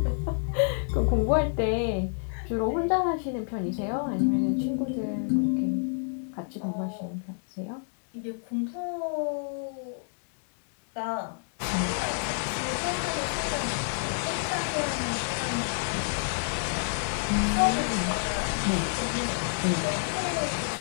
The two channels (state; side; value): silent; right; digital silence